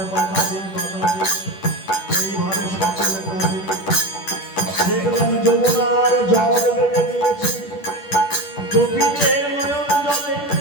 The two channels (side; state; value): right; late; 10 ms